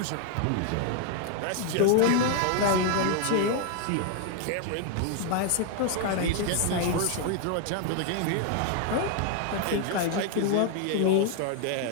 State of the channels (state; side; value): different; both; correlation 0.00